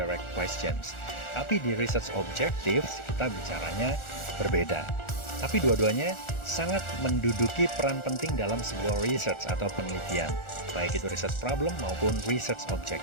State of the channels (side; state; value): right; late; 1.4 ms